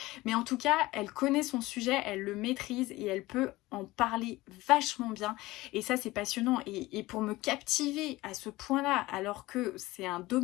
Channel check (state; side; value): quieter; right; 19.1 dB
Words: mais en tout cas elle connaît son sujet, elle le maîtrise et elle peut en parler vachement bien et ça c'est passionnant et pour me captiver à ce point là alors que c'est un